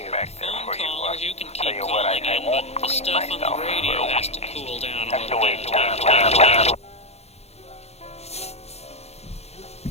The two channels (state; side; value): late; right; 0.31 ms